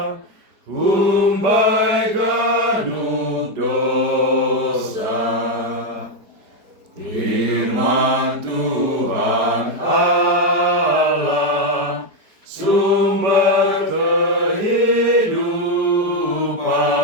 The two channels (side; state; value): left; late; 4.6 ms